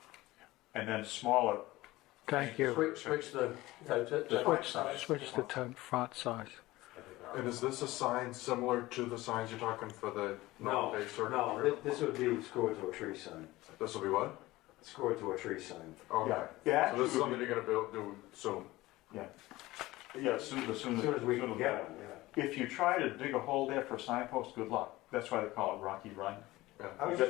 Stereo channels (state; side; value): quieter; right; 18.5 dB